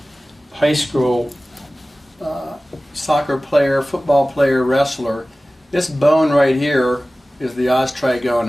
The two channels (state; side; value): normal; both; correlation 0.97